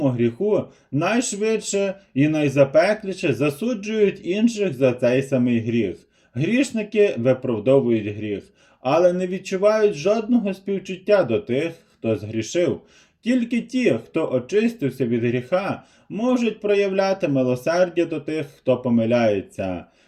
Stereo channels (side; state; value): both; identical; correlation 1.00